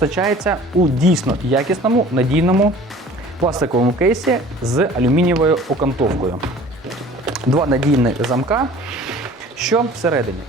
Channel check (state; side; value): normal; both; correlation 0.47